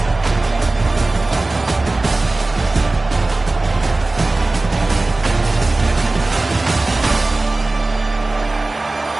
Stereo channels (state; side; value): quieter; left; 3.1 dB